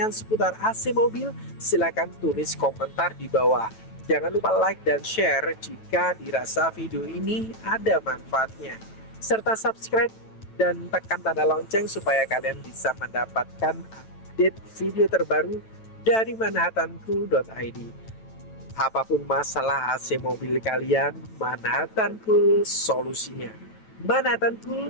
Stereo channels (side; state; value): right; late; 9.1 ms